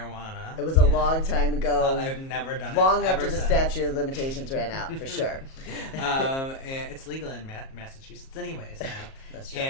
It was a long time ago. I've never done it. Long after the statute of limitations ran out, for sure. And it's legal in Massachusetts anyways now. That's true.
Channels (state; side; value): late; right; 37 ms